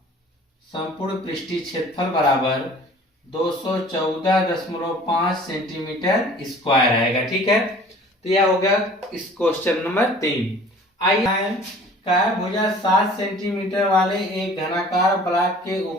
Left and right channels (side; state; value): both; normal; correlation 0.48